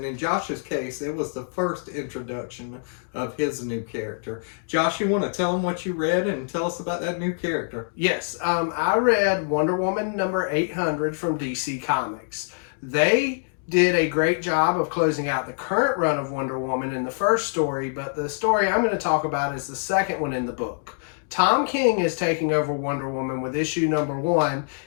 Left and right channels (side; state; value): right; silent; digital silence